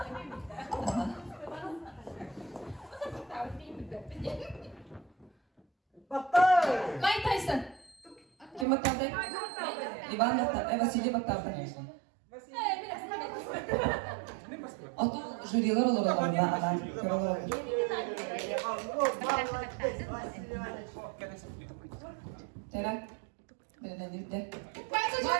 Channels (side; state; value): left; drops out; at 8.7 s